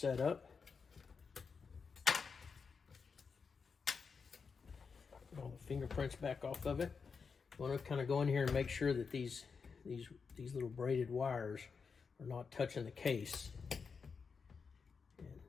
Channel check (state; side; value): quieter; right; 5.4 dB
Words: up. All the fingerprints back off of it. I want to kind of go in here and make sure that these little braided wires are not touching the case. And